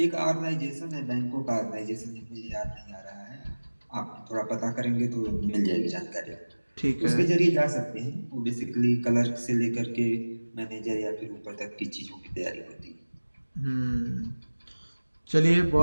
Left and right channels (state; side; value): inverted; both; correlation -1.00